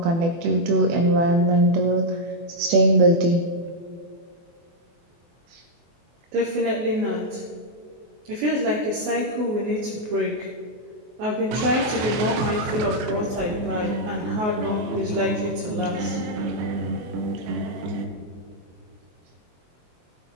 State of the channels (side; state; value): left; late; 24 ms